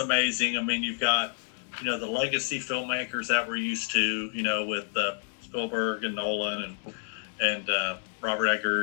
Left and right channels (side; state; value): right; silent; 59 dB below the other